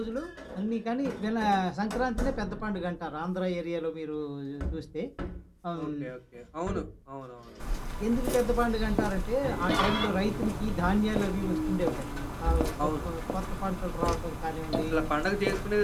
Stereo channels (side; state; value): both; identical; correlation 1.00